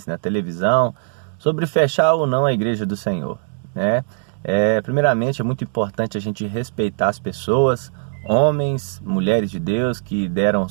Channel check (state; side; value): silent; left; digital silence